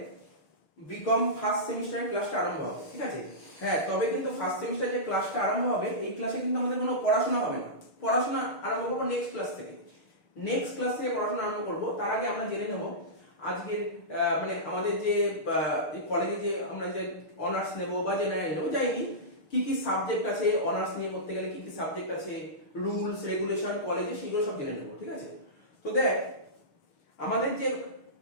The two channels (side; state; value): right; late; 6.6 ms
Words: বিকম ফার্স্ট সেমিস্টারের ক্লাসটা আরম্ভ হবে, ঠিক আছে? হ্যাঁ, তবে কিন্তু ফার্স্ট সেমিস্টার যে ক্লাসটা আরম্ভ হবে এই ক্লাসে কিন্তু আমাদের কোনো পড়াশোনা হবে না। পড়াশোনা আরম্ভ করবো নেক্সট ক্লাস থেকে। নেক্সট ক্লাস থেকে পড়াশোনা আরম্ভ করব। তার আগে আমরা জেনে নেব আজকের মানে আমাদের যে কলেজে যে আমরা যে অনার্স নেব বা জেনারেল নেব যাইনি, কি কি সাবজেক্ট আছে, অনার্স নিয়ে পড়তে গেলে কি কি সাবজেক্ট আছে, রুলস রেগুলেশন কলেজে, সেগুলো সব জেনে নেব, ঠিক আছে? তো দেখ আমাদের যে